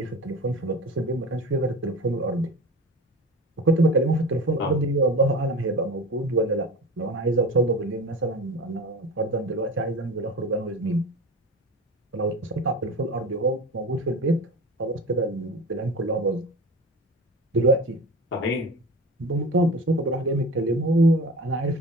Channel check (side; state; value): both; normal; correlation 0.33